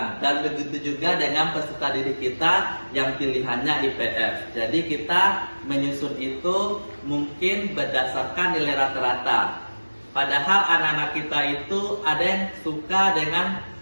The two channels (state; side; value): inverted; both; correlation -1.00